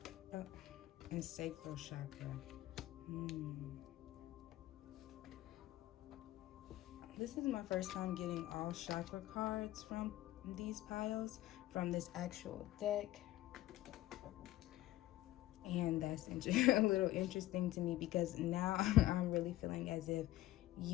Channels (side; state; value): right; quieter; 15.5 dB